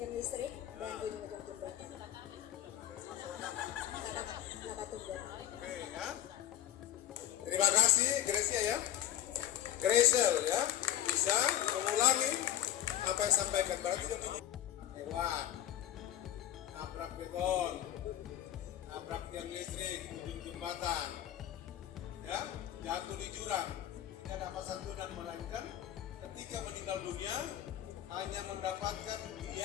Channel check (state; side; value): quieter; right; 12.1 dB